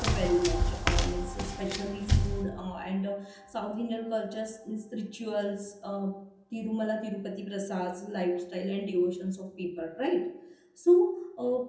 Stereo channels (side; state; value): both; identical; correlation 1.00